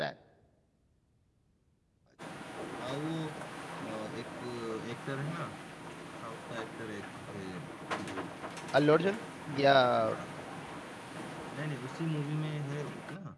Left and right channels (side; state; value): both; identical; correlation 1.00